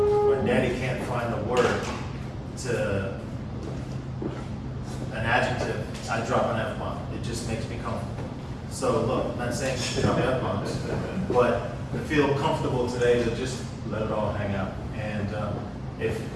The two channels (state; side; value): identical; both; correlation 1.00